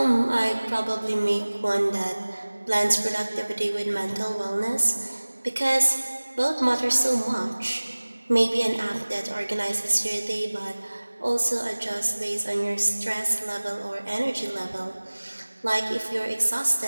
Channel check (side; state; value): both; inverted; correlation -1.00